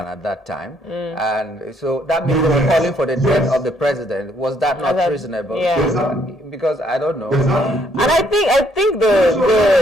at that time. And so that means they were calling for the death of the president. Was that not reasonable? Yeah. Because I don't know. And I think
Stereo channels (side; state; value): both; normal; correlation 0.69